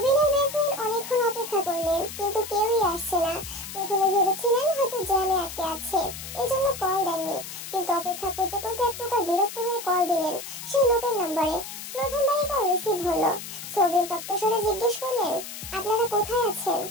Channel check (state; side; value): noise; left; hiss, 10 dB below the sound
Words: আর বেখুইন অনেকক্ষণ অপেক্ষা করলেন কিন্তু কেউই আসছে না। প্রথমে ভেবেছিলেন হয়তো জ্যামে আটকে আছে, এজন্য কল দেননি, কিন্তু অপেক্ষা করতে করতে এক প্রকার বিরক্ত হয়ে কল দিলেন সেই লোকের নম্বরে। প্রথমবারই কল রিসিভ হলো। সৌবিন তপ্তস্বরে জিজ্ঞেস করলেন, আপনারা কোথায় আছেন?